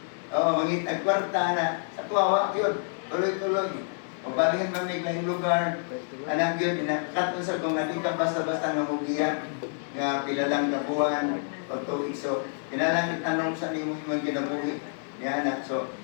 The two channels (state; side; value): silent; right; digital silence